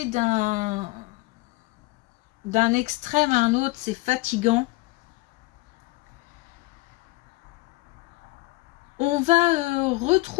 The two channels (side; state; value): right; quieter; 22.0 dB